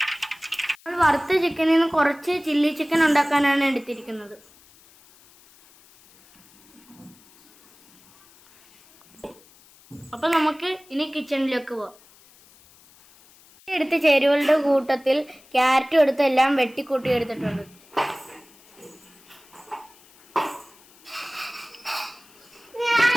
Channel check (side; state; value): left; noise; hiss, 27 dB below the sound